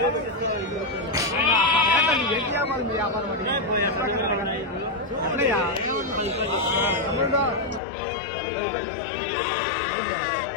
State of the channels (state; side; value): drops out; right; at 7.8 s